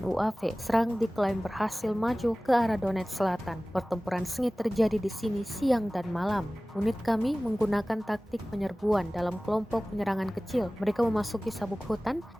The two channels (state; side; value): normal; both; correlation 0.98